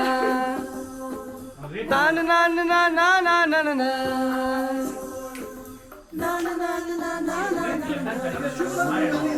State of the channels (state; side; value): identical; both; correlation 1.00